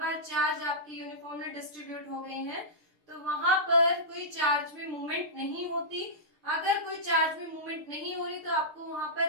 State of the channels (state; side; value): late; left; 6.6 ms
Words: चार्ज आपकी uniformly distribute हो गए हैं तो वहां पर कोई चार्ज में मूवमेंट नहीं होती. अगर कोई चार्ज में मूवमेंट नहीं हो रही तो आपको वहां